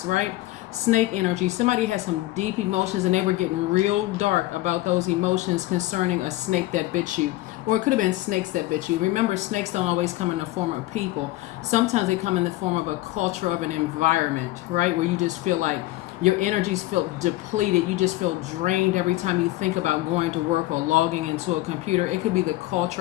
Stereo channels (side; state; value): right; quieter; 17.2 dB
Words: right? Snake energy. Somebody has some deep emotions and they were getting real dark about those emotions concerning a snake that bit you. Or it could have been snakes that bit you. Remember, snakes don't always come in the form of people. Sometimes they come in the form of a culture, of an environment, right? Where you just feel like your energies feel depleted. You just feel drained every time you think about going to work or logging into a computer. It could be the